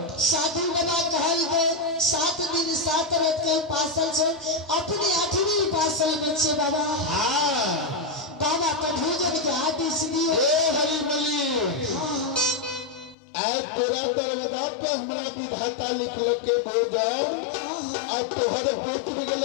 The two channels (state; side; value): drops out; right; at 13.2 s